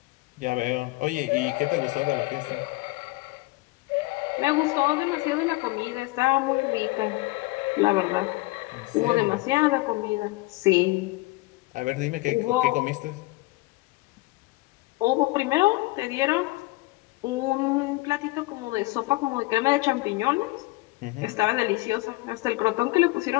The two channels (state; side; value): quieter; right; 21.5 dB